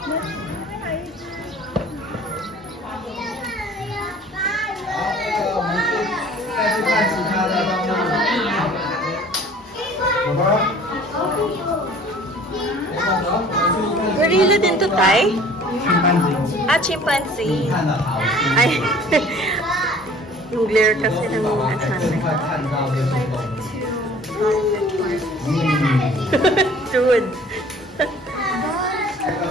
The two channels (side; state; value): both; normal; correlation 0.50